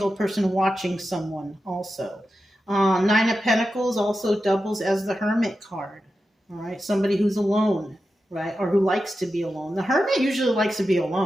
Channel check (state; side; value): normal; both; correlation 0.91